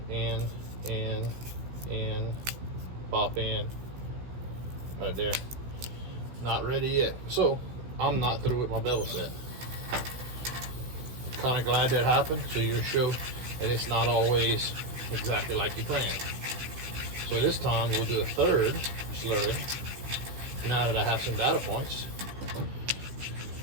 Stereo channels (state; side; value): late; left; 16 ms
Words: In, pop in. Right there. Not ready yet. So, I'm not through with my bevel set. Kind of glad that happened, so you show that it's not always exactly like you planned. So this time we'll do a third slurry. Now that I have some data points,